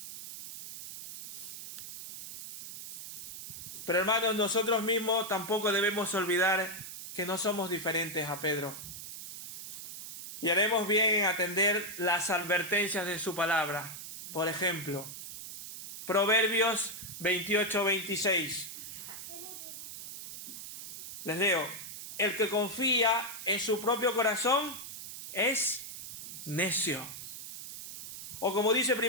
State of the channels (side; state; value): right; noise; hiss, 10 dB below the sound